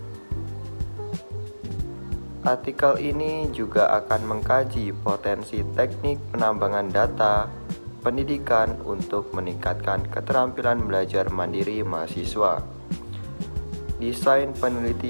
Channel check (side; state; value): both; inverted; correlation -1.00